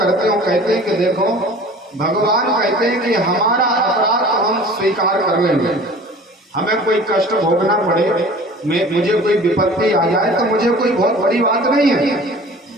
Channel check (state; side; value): normal; both; correlation 0.44